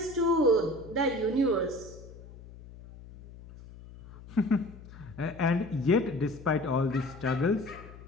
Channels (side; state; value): left; noise; hum, 17 dB below the sound